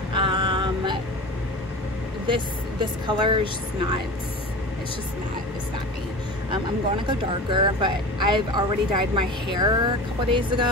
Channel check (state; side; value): normal; both; correlation 0.33